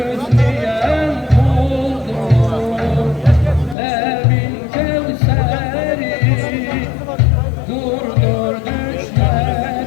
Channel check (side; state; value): right; drops out; at 3.8 s